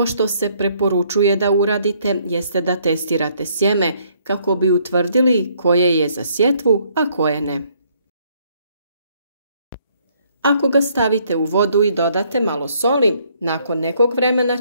što se preporučuje da uradite jeste da testirate sjeme kako bi utvrdili koje je za sjetvu, a koje ne. Ako ga stavite u vodu i dodate malo soli, nakon nekog vremena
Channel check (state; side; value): inverted; both; correlation -0.66